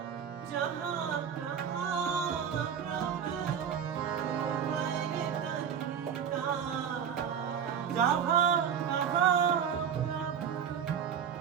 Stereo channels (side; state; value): left; quieter; 7.9 dB